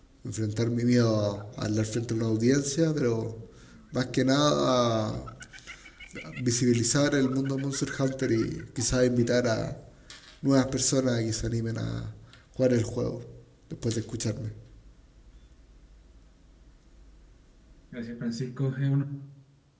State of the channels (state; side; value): identical; both; correlation 1.00